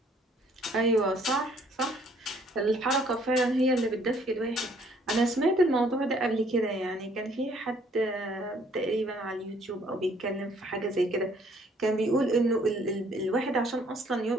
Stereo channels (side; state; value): both; normal; correlation 0.62